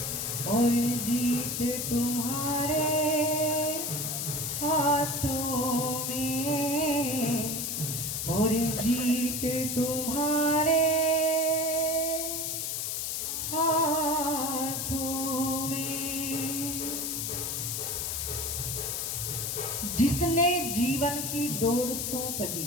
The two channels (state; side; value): noise; left; hiss, 2 dB below the sound